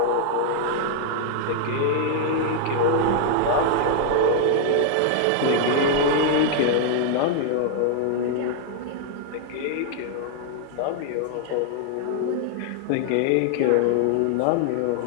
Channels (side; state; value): both; different; correlation -0.01